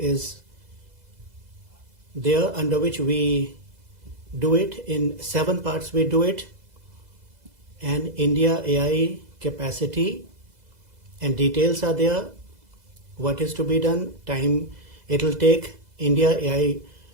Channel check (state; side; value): late; left; 2.0 ms